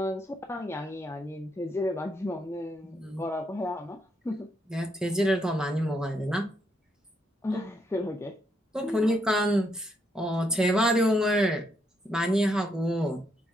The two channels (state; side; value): normal; both; correlation 0.77